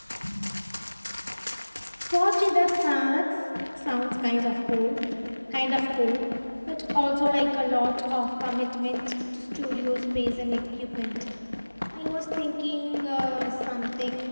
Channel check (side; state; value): both; inverted; correlation -1.00